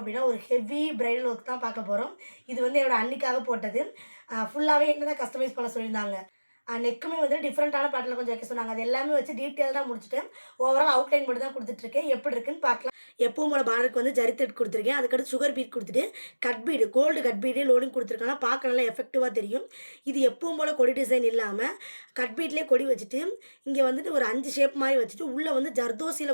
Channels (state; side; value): inverted; both; correlation -1.00